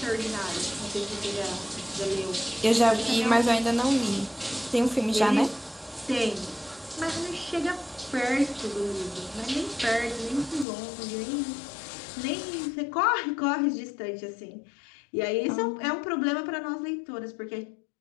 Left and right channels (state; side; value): drops out; right; at 10.7 s